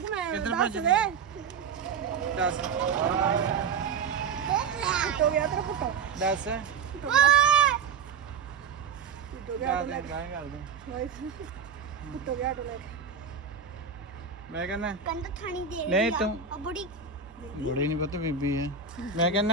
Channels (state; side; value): quieter; left; 6.0 dB